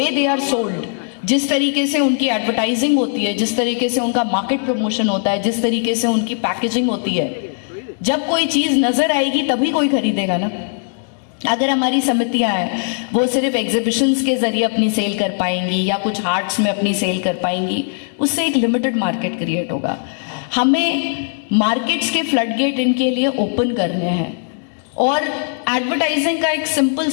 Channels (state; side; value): silent; right; digital silence